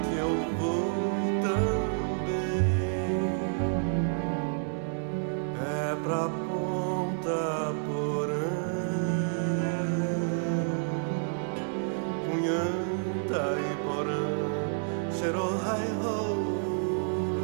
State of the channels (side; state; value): left; silent; 58 dB below the other